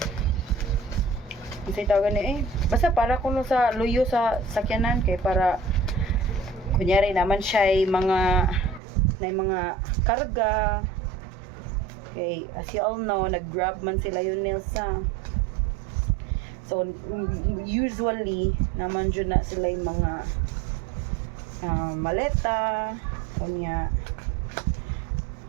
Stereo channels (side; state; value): left; drops out; at 8.8 s